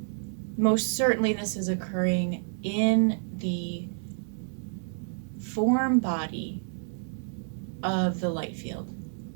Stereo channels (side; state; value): left; silent; 58 dB below the other